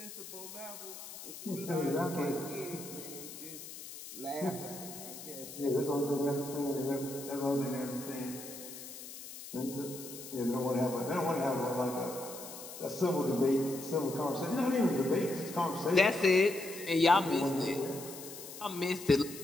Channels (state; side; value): noise; left; hiss, 12 dB below the sound